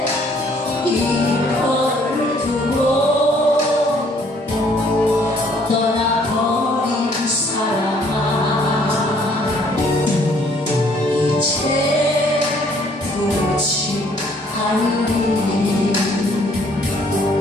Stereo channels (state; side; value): normal; both; correlation 0.62